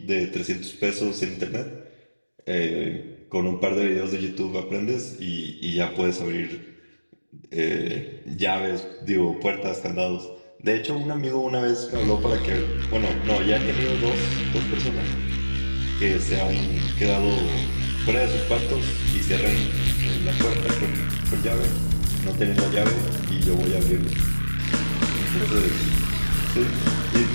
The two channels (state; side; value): inverted; both; correlation -1.00